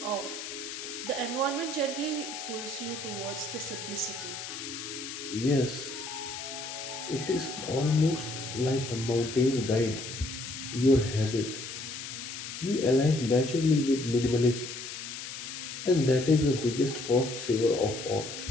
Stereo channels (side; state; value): left; noise; hiss, 8 dB below the sound